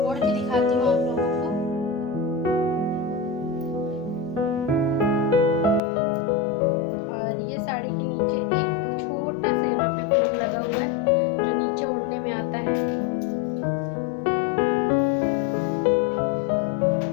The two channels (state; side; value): drops out; right; at 5.8 s